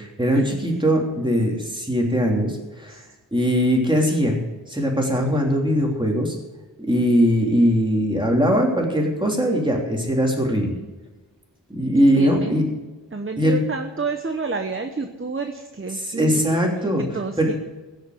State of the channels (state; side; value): normal; both; correlation 0.65